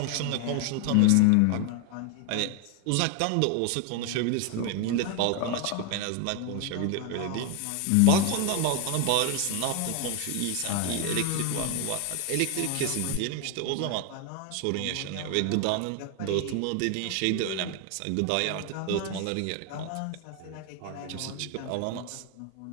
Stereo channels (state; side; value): different; both; correlation 0.01